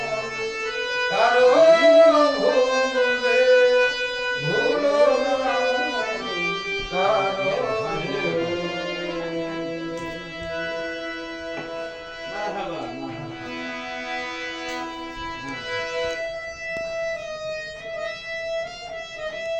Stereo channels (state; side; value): identical; both; correlation 1.00